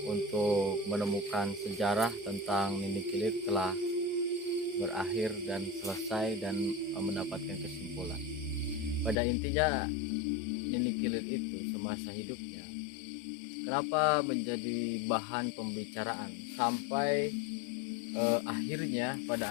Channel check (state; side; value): drops out; right; at 9.2 s